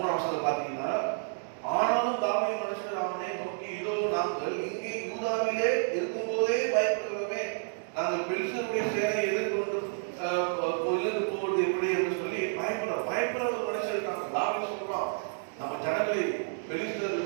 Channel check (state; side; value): silent; left; digital silence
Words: வசனத்துல பாத்தீங்கன்னா, ஆனாலும் தாவீது மனுஷர் அவனை நோக்கி, இதோ நாங்கள் இங்கே யூதாவிலே இருக்கும் போதே பயப்படுகிறோமே, நாங்கள் பெலிஸ்தருடைய சேனையை எதிர்கொண்டு போவது எப்படி என்று சொல்லி பயப்படுற ஒரு மனுஷன் இருக்காங்க. தாவீது சொல்றான், நம்ம ஜனங்களை